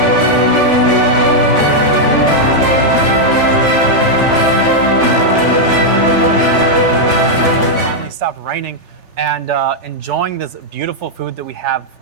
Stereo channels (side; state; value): left; late; 3.4 ms